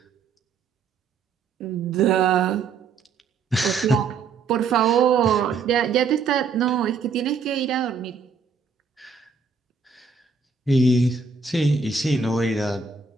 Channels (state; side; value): quieter; left; 5.1 dB